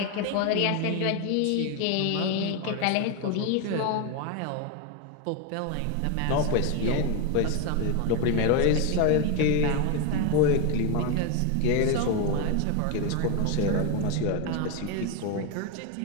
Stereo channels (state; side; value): different; both; correlation 0.02